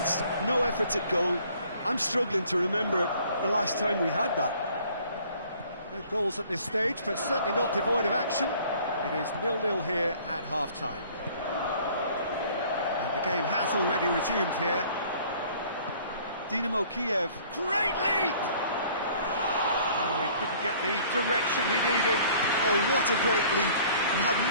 No efforts at goal. I'm struggling to remember the last time we had that. No goals at this stage, but certainly not devoid of action. It is 0-0 here at half-time. And the game has already resumed here. Dinámo Kiev. Great leap! Oh, he couldn't get the direction he needed. Oh, what a great leap. He had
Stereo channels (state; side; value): inverted; both; correlation -0.54